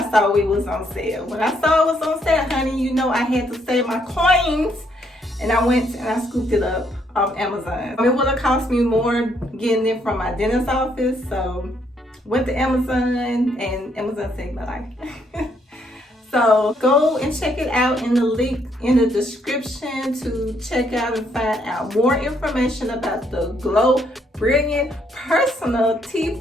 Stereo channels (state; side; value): normal; both; correlation 0.71